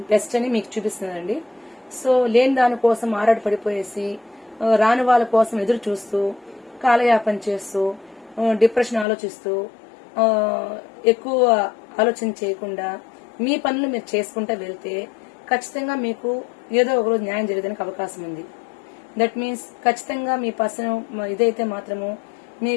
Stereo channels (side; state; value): right; drops out; at 9.1 s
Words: బెస్ట్ అని మీకు చూపిస్తుందండి. సో లేని దానికోసం ఆరాటపడిపోయేసి రాని వాళ్ళ కోసం ఎదురు చూస్తూ కాలయాపన చేస్తూ డిప్రెషన్ ఆలోచిస్తూ ఎక్కువ ఆలోచన చేయకుండా మీ పనులు మీరు చేసుకుంటూ వెళ్తే ఖచ్చితంగా మీకు ఏదో ఒకరోజు న్యాయం జరిగేదానికి అవకాశం ఉంది. దట్ మీన్స్ ఖచ్చితంగా మీ పర్సన్ ఇదైతే మాత్రము